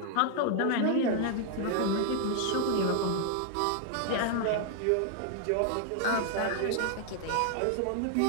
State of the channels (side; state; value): both; different; correlation 0.00